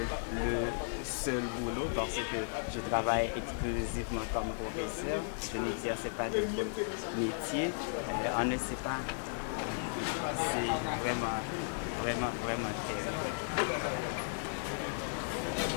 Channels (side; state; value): right; silent; digital silence